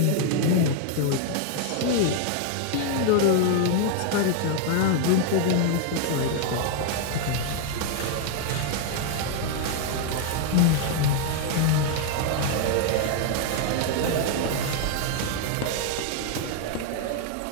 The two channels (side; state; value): both; different; correlation 0.00